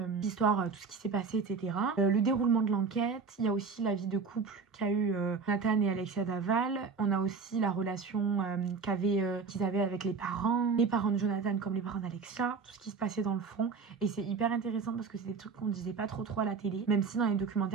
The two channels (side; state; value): left; quieter; 5.1 dB